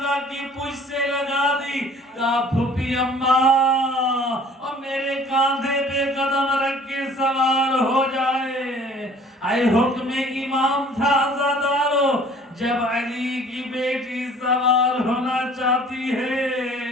کی پشت سے لگا دی. کہا پھوپھی اماں اور میرے کاندھے پہ قدم رکھ کے سوار ہو جائے. آئے حکم امام تھا عزادارو. جب علی کی بیٹی سوار ہونا چاہتی ہے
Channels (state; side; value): normal; both; correlation 0.52